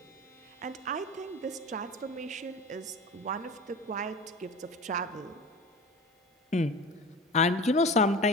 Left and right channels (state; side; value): normal; both; correlation 0.34